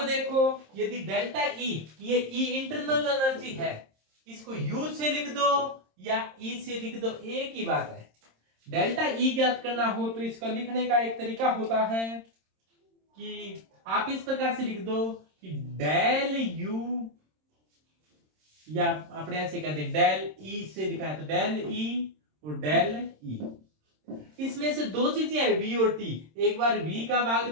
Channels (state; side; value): late; left; 26 ms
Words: देखो यदि डेल्टा ई, ये ई इंटरनल एनर्जी है, इसको यू से लिख दो या ई से लिख दो, एक ही बात है। डेल्टा ई ज्ञात करना हो तो इसका लिखने का एक तरीका होता है कि आप इस प्रकार से लिख दो कि डेल यू, या अपने ऐसे कहते हैं डेल ई से लिखा है तो डेल ई और डेल ई। इसमें से दो चीजें है v और t, एक बार v का भाग